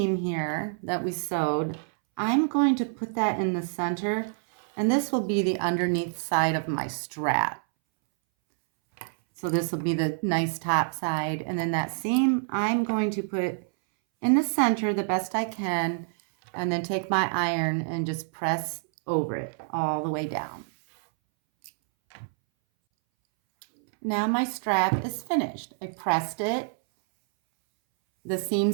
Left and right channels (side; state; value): left; silent; 60 dB below the other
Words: here that we sewed. I'm going to put that in the center, and this will be the underneath side of my strap. So this will be the nice top side, and then that seam I'm going to put in the center the best I can, and then take my iron and just press over it all the way down. Now my strap is finished. I pressed it. The